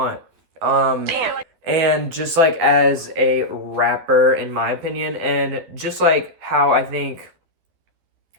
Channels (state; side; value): late; left; 12 ms